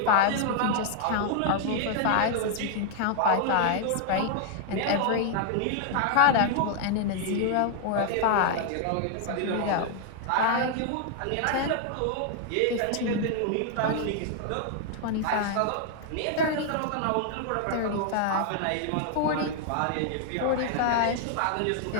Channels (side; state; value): both; different; correlation 0.00